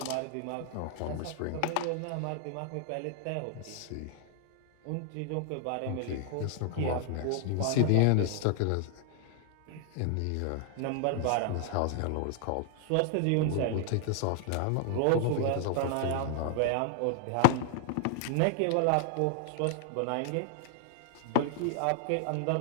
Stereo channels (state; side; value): different; both; correlation 0.00